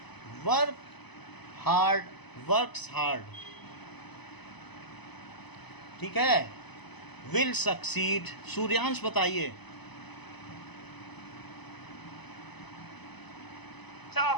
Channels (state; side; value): late; right; 0.99 ms